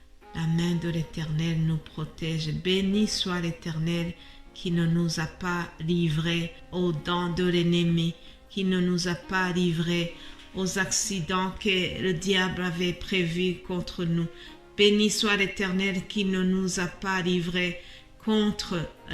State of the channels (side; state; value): both; identical; correlation 1.00